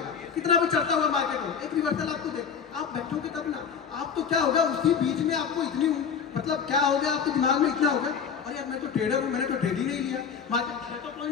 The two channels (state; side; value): quieter; right; 6.7 dB